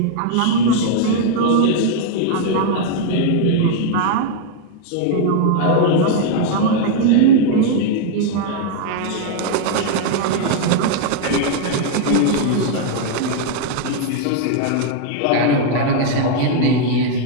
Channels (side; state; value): both; different; correlation 0.00